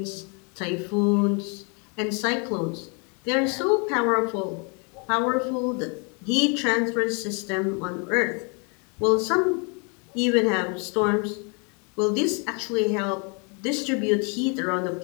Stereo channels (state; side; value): quieter; right; 35.2 dB